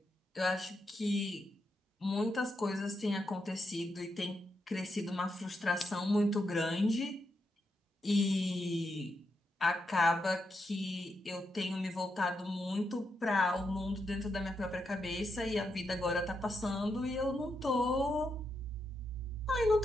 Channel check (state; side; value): normal; both; correlation 0.83